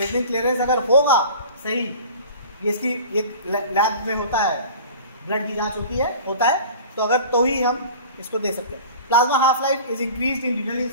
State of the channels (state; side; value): inverted; both; correlation -0.40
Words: clearance अगर होगा सही, ये इसकी एक लैब में होता है, ब्लड की जांच होती है, होता है, तो अगर तो ही हम इसको दे सकते हैं। Plasma half life is increased in renal